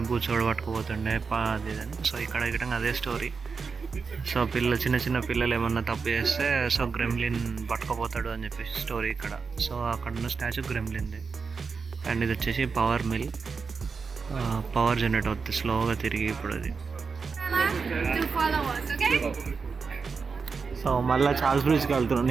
బూచోడు పట్టుకుపోతుండే అది అని. సో ఇక్కడ అదే స్టోరీ. సో చిన్న పిల్లలు ఏమన్నా తప్పు చేస్తే సో గ్రెమ్లిన్ పట్టుకుపోతాడు అని చెప్పేసి స్టోరీ ఇక్కడ. సో అక్కడ ఉన్న స్టాచ్యూ గ్రెమ్లిన్ది. అండ్ ఇది వచ్చేసి పవర్ మిల్, పవర్ జనరేట్ అవుతుంది స్లోగా తిరిగి ఇప్పుడు అది. సో మళ్ళీ చార్ల్స్ బ్రిడ్జ్కి వెళ్తున్నాం.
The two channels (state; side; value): quieter; left; 5.1 dB